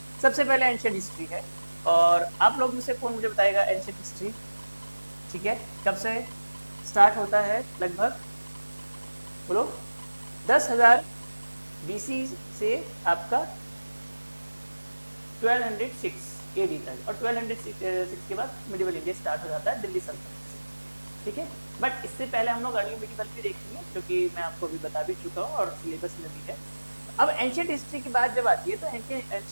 सबसे पहले एंशिएंट हिस्ट्री है, और आप लोग में से कौन मुझे बताएगा एंशिएंट हिस्ट्री, ठीक है, कब से स्टार्ट होता है लगभग, बोलो। 10,000 BC से आपका 1206 AD तक, और 1206 के बाद मिडिवल इंडिया स्टार्ट हो जाता है दिल्ली सल्तनत से, ठीक है। बट इससे पहले हम लोग अर्ली मिडिवल भी देखेंगे, क्योंकि मैं आपको अभी बता भी चुका हूँ और सिलेबस में भी है। अब एंशिएंट हिस्ट्री की बात जब आती है, तो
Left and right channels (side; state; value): both; inverted; correlation -1.00